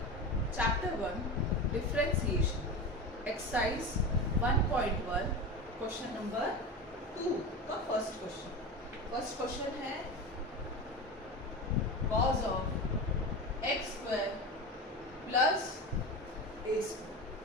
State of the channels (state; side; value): normal; both; correlation 0.25